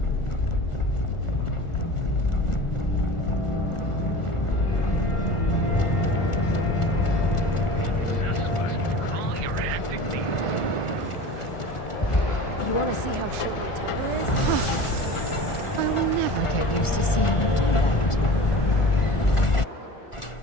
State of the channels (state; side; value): late; right; 1.4 ms